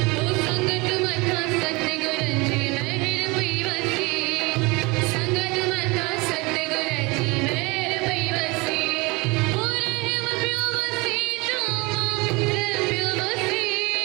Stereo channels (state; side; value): quieter; left; 25.7 dB